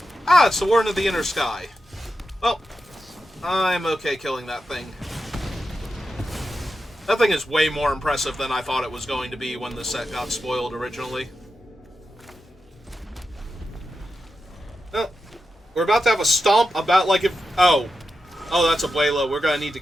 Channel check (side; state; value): both; normal; correlation 0.89